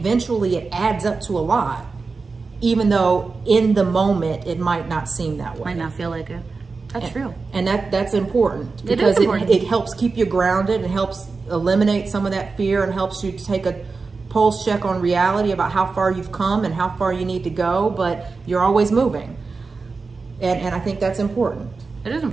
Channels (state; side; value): quieter; left; 4.3 dB